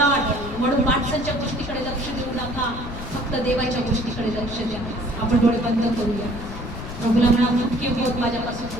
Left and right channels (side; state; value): left; noise; rumble, 10 dB below the sound